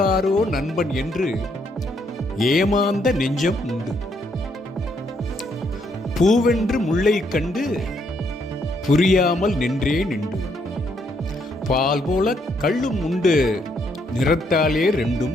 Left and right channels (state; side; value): normal; both; correlation 0.73